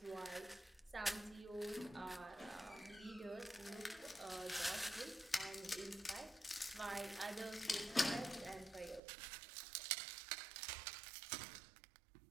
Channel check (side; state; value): left; drops out; at 9.0 s